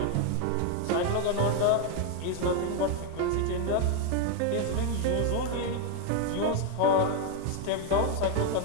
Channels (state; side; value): different; both; correlation 0.01